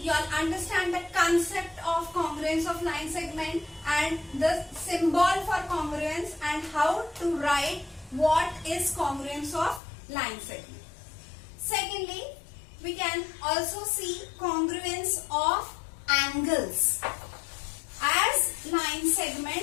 all understand the concept of congruence of line segment and the symbol for congruence and how to write what is congruence of line segment. Secondly, we can also see congruence of angles. As line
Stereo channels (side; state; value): right; drops out; at 9.8 s